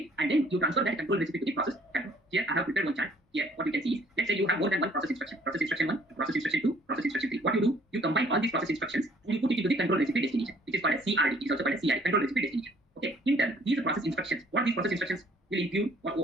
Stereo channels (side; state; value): both; normal; correlation 0.59